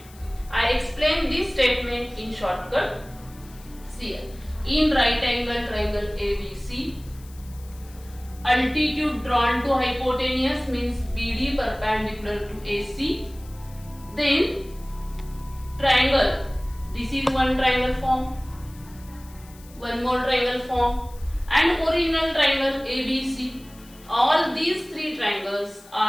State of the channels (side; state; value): left; noise; hiss, 24 dB below the sound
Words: I explain this statement in shortcut. See here. In right angle triangle ABC, altitude drawn to hypotenuse means BD perpendicular to AC. Then triangle. This is one triangle form. One more triangle form and original triangle ABC. All these three triangles